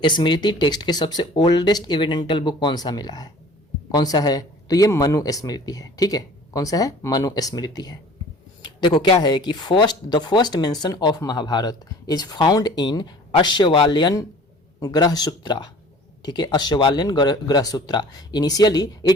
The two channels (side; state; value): both; normal; correlation 0.47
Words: स्मृति टेक्स्ट के सबसे ओल्डेस्ट एविडेंटल बुक कौन सा मिला है, कौन सा है, तो ये मनु स्मृति है, ठीक है। कौन सा है, मनु स्मृति है। देखो क्या है कि the first mention of Mahabharat is found in Ashvalayan Grihasutra, ठीक है, Ashvalayan Grihasutra. Initially